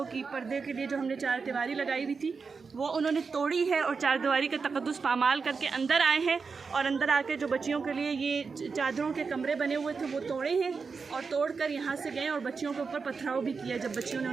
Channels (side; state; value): left; quieter; 5.0 dB